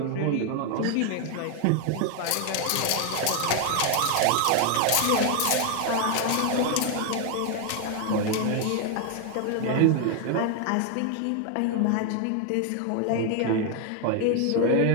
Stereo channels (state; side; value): different; both; correlation 0.00